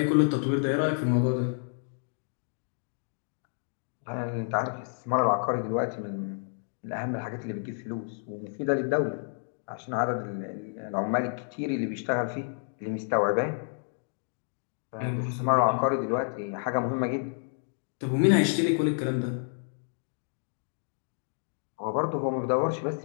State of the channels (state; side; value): silent; right; digital silence